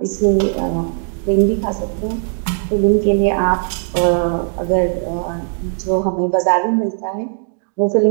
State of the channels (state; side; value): silent; left; digital silence